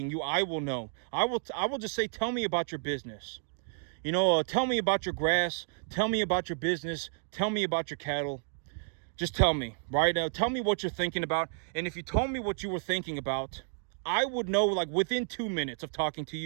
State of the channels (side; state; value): left; silent; digital silence